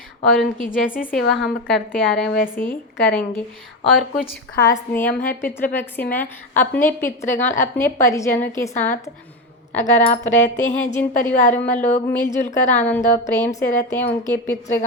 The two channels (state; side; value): normal; both; correlation 0.16